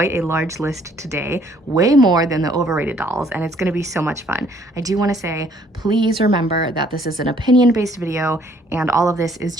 a large list today, way more than the overrated dolls, and it's going to be so much fun. I do want to say, please remember that this is an opinion-based video and all of this is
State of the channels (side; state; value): both; normal; correlation 0.62